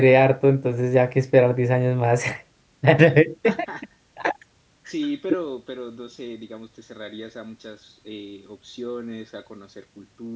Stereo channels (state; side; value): identical; both; correlation 1.00